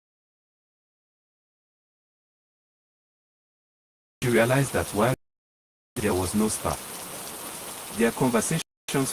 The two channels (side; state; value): both; identical; correlation 1.00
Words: She realized that while there was no spark, their conversations